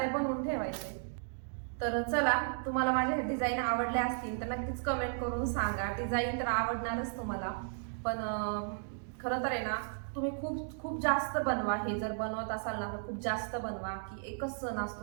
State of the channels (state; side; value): silent; left; digital silence